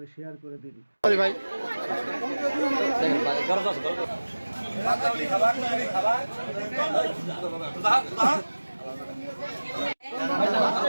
শেয়ার করে দিন। ভাই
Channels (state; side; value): inverted; both; correlation -1.00